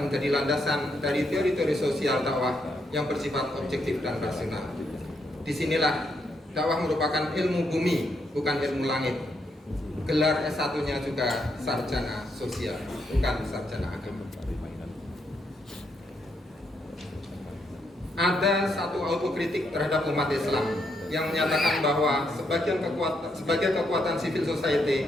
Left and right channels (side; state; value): both; normal; correlation 0.78